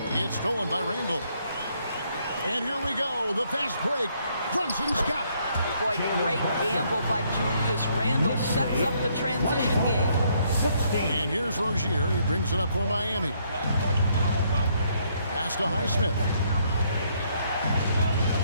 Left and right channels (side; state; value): both; inverted; correlation -0.70